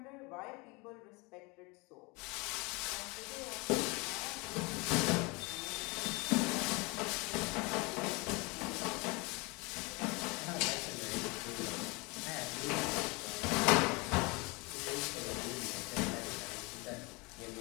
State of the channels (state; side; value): quieter; right; 27.3 dB